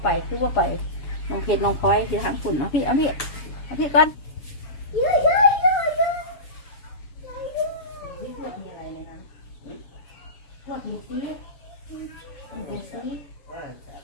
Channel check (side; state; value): right; late; 7.2 ms